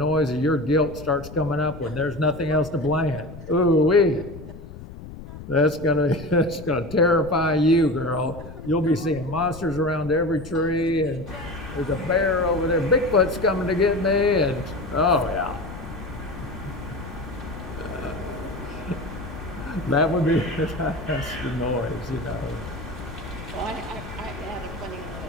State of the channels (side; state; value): left; noise; rumble, 13 dB below the sound